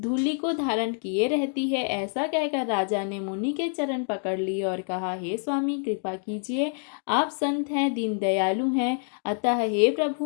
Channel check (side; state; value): right; silent; 60 dB below the other